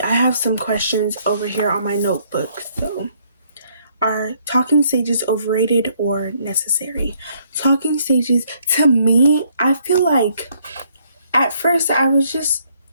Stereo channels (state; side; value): inverted; both; correlation -0.68